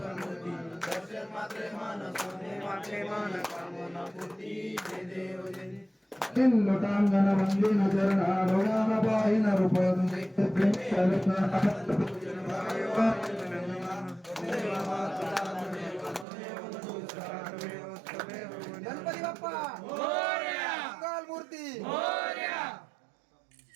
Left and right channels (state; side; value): drops out; left; at 16.2 s